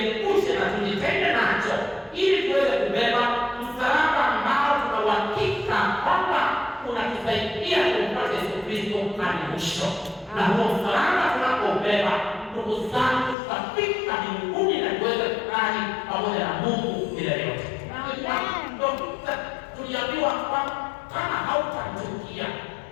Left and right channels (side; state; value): right; drops out; at 13.4 s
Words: na tujitenge nacho, ili tuweze kubeba msalaba ambao tuna uhakika kwamba unatusaidia kumpata Yesu Kristo hadi mwisho. Na huo msalaba tunapobeba, ndugu zangu, tutafika mbinguni na tuweze kukaa pamoja na Mungu milele yote. Tuliambiwa kwamba kama hautamchukia